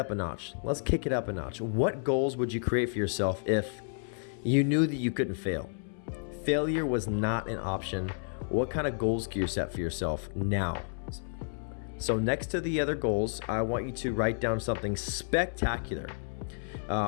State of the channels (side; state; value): right; silent; 57 dB below the other